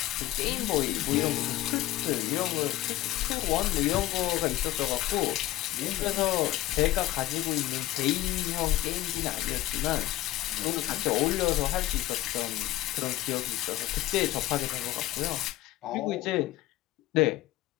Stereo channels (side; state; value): right; quieter; 15.9 dB